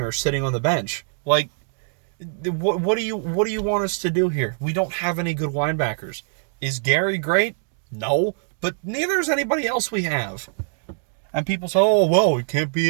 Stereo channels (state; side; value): silent; left; 63 dB below the other